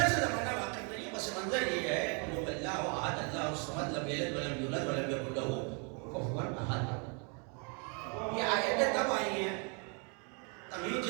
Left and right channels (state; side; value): quieter; left; 35.9 dB